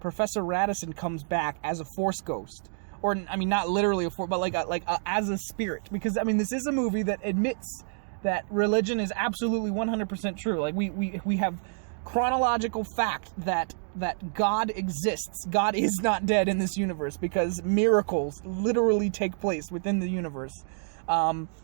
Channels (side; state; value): left; silent; digital silence